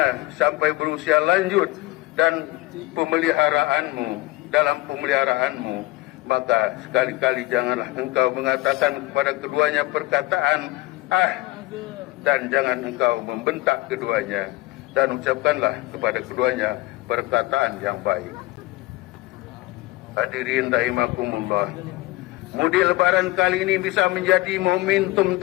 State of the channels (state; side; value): quieter; right; 19.7 dB